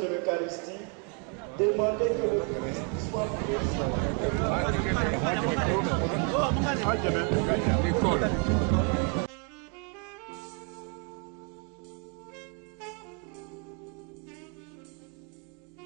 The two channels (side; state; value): left; quieter; 35.6 dB